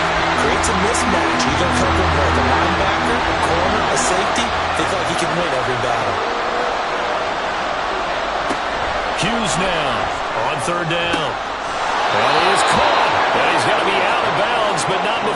creates a mismatch, either covering like a linebacker, a corner, a safety. They feel like he can win every battle. Hughes now on 3rd down. And he is caught. And he's got to be out of bounds, but not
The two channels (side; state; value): both; identical; correlation 1.00